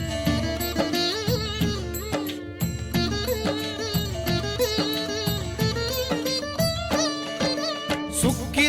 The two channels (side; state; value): both; identical; correlation 1.00